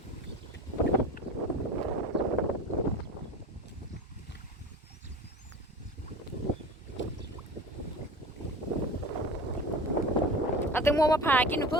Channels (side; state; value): both; normal; correlation 0.34